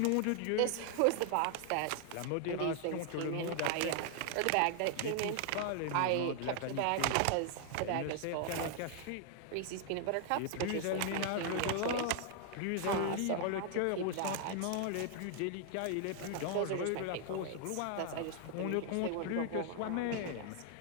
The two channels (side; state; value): both; different; correlation 0.00